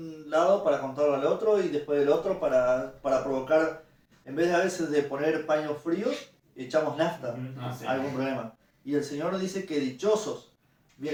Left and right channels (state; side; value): identical; both; correlation 1.00